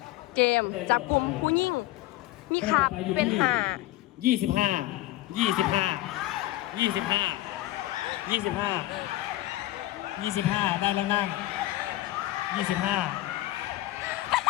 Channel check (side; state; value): right; quieter; 16.6 dB